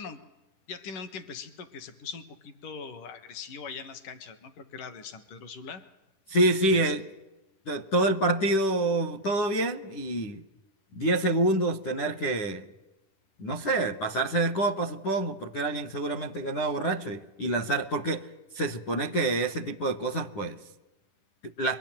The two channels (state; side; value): late; right; 10 ms